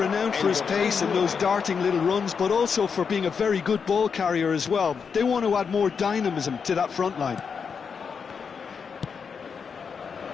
for his pace and those darting little runs, but also for being a very good ball carrier as well. They want to add more dynamism to that front line.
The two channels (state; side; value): quieter; right; 6.1 dB